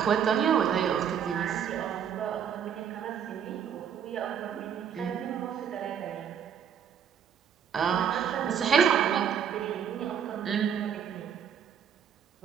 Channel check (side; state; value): left; quieter; 8.1 dB